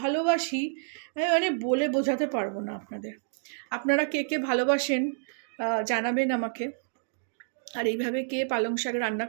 ভালোবাসি, মানে বলে বোঝাতে পারবো না আপনাদের। আপনারা কে কে ভালোবাসেন জানাবেন আমাকে। আর এইভাবে কে পালং শাক রান্না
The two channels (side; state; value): left; silent; digital silence